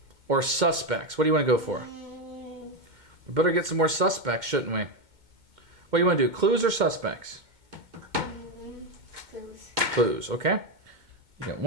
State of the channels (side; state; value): left; late; 2.1 ms